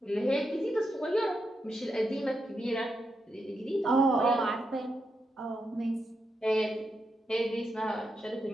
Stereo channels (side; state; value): both; normal; correlation 0.84